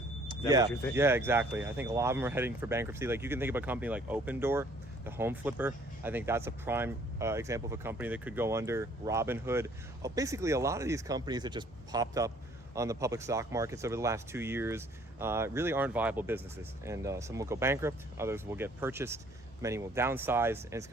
that what you're thinking? Yeah, exactly. I think a lot of them are heading for bankruptcy. Like, you can think of a company like Open Door, the home flipper. I think that's a prime example of a company that could go under. Robinhood. Basically, a lot of these companies that just popped up on the public stock markets over the last 2 years really aren't viable businesses. And some will go bankrupt, others will get purchased, many will downsize, and it's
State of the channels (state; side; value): normal; both; correlation 0.58